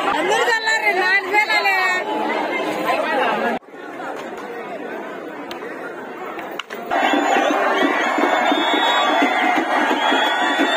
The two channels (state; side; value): identical; both; correlation 1.00